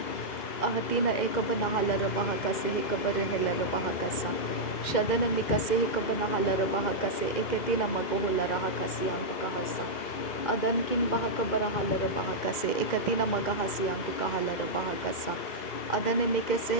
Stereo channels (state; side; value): late; right; 2.1 ms